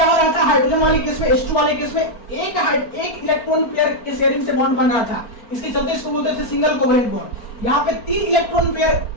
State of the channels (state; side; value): late; right; 4.4 ms